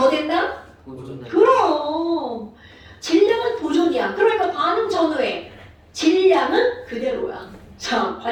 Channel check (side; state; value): both; identical; correlation 1.00